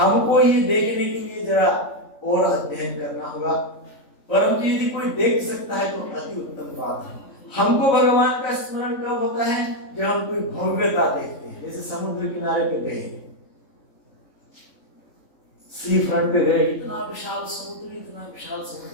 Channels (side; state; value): right; late; 3.7 ms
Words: ये देखने के लिए जरा और अध्ययन करना होगा, परंतु यदि कोई देख सकता है तो अति उत्तम बात है। हमको भगवान का स्मरण कब होता है, जब हम कोई भव्यता देखते हैं। जैसे समुद्र किनारे पे गए, सी फ्रंट पे गए, इतना विशाल समुद्र, इतना विशाल